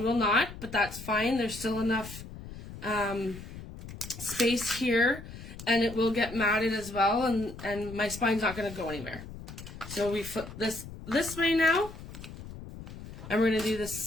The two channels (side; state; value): left; noise; rumble, 13 dB below the sound